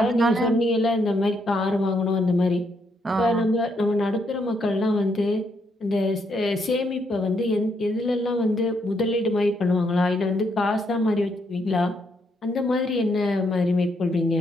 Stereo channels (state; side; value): normal; both; correlation 0.76